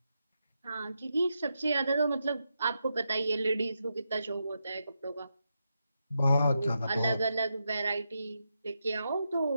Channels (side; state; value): both; inverted; correlation -0.85